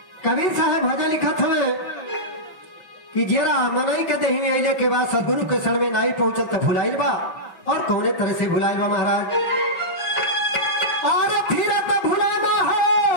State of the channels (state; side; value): late; right; 5.9 ms